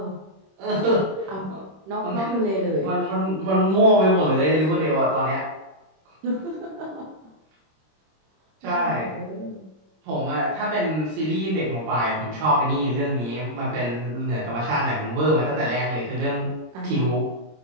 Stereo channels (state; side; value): late; left; 26 ms